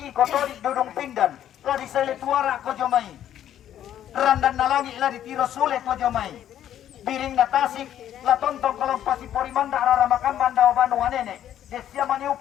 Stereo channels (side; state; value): right; quieter; 10.9 dB